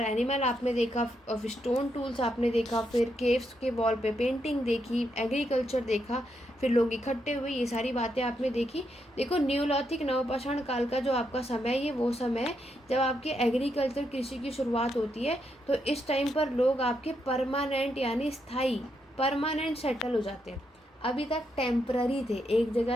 आपने देखा, ऑफ स्टोन टूल्स आपने देखा, फिर केव्स के वॉल पे पेंटिंग देखी, एग्रीकल्चर देखा, फिर लोग इकट्ठे हुए, ये सारी बातें आपने देखी। देखो, न्यूलिथिक नवपाषाण काल का जो आपका समय है ये वो समय है जब आपके एग्रीकल्चर कृषि की शुरुआत होती है। तो इस टाइम पर लोग आपके परमानेंट यानी स्थायी परमानेंट सेटल हो जाते हैं। अभी तक टेम्पररी थे, एक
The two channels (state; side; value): normal; both; correlation 0.80